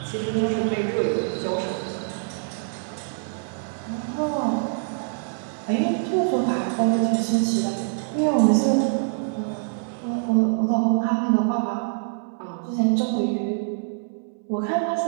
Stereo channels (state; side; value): silent; left; 62 dB below the other